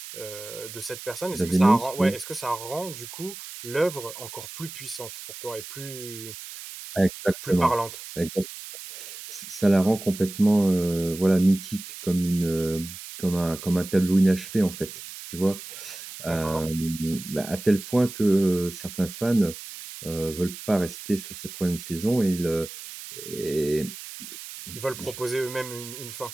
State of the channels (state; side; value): noise; right; hiss, 12 dB below the sound